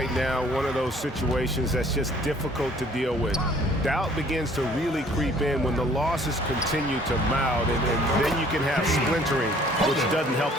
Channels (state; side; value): normal; both; correlation 0.57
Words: now one of those situations that's just difficult to deal with. Doubt begins to really creep in when the losses continue to mount, and then you can have splintering, which doesn't help